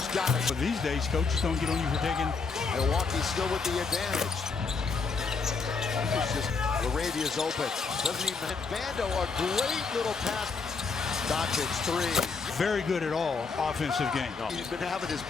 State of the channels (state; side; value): quieter; right; 4.8 dB